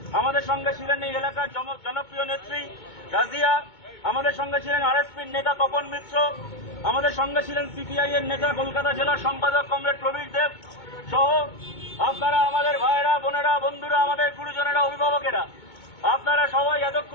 আমাদের সঙ্গে ছিলেন এই এলাকার জনপ্রিয় নেত্রী রাজিয়া। আমাদের সঙ্গে ছিলেন আরএসপির নেতা তপন মিত্র। আমাদের সঙ্গে ছিলেন সিপিআই এর নেতা কলকাতা জেলার সম্পাদক কমরেড প্রবীর দেব সহ আপনারা আমাদের ভাইয়েরা, বোনেরা, বন্ধুরা, আমাদের গুরুজনেরা, অভিভাবকেরা, আপনারা সবাই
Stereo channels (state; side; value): late; right; 2.2 ms